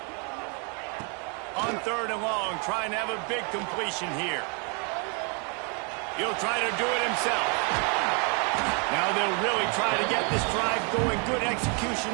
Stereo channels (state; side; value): quieter; left; 36.1 dB